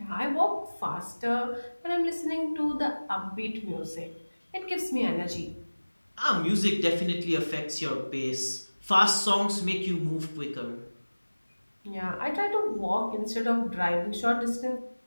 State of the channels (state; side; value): inverted; both; correlation -1.00